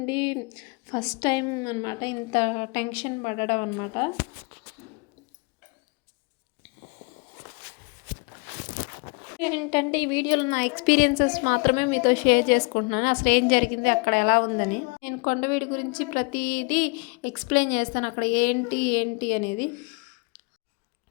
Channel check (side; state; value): right; quieter; 31.2 dB